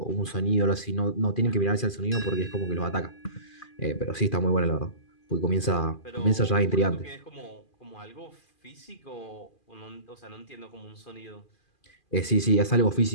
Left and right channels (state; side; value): late; right; 2.4 ms